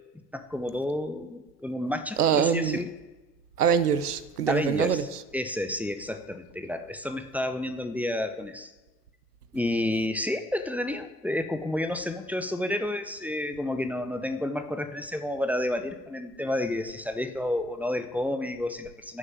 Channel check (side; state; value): both; normal; correlation 0.55